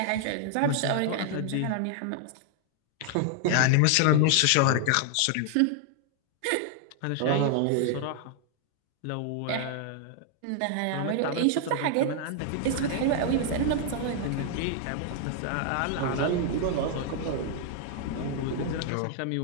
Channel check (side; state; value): both; different; correlation 0.00